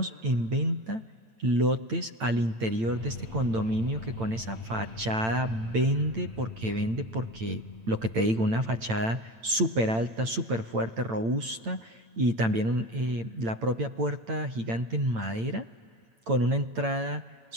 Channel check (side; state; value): left; late; 8.9 ms